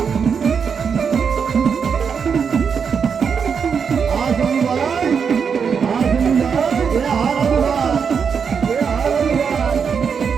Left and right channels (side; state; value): left; quieter; 6.4 dB